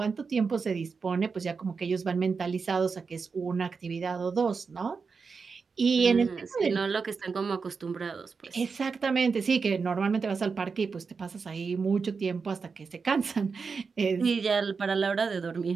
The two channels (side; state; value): left; quieter; 5.1 dB